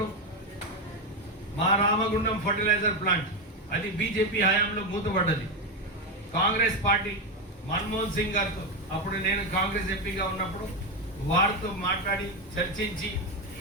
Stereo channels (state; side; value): normal; both; correlation 0.10